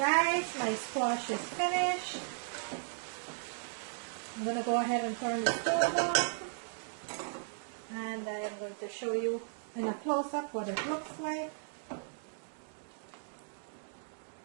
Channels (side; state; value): left; silent; digital silence